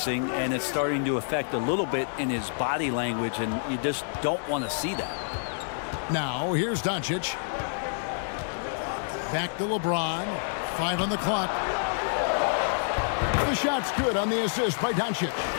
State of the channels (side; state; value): right; silent; digital silence